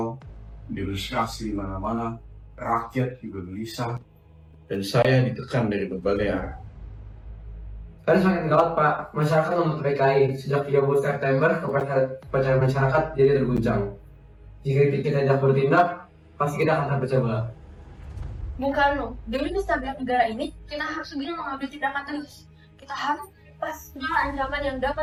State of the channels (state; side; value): identical; both; correlation 1.00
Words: demonstrasi di mana-mana, rakyat juga gelisah, dan saya ditekan dari berbagai arah. Kan semakin gawat Pak, masyarakat menuntut PKI. Sejak 30 September, kepercayaan masyarakat jadi terguncang. Jika kita tidak bertindak, pasti kita akan terpecah belah. Bung Karno, demi kestabilan negara ini, kita harus segera mengambil tindakan tegas. Kita harus lepas segala ancaman yang